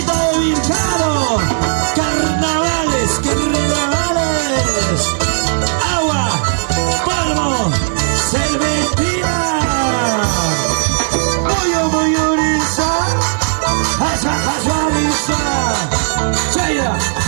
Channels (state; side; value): silent; left; digital silence